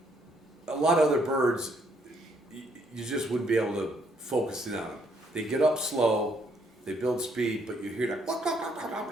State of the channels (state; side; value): normal; both; correlation 0.70